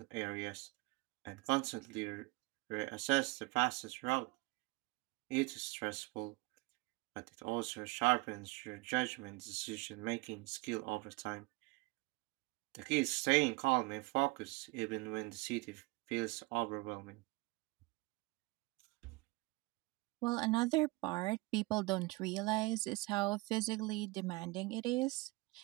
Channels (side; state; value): left; quieter; 24.7 dB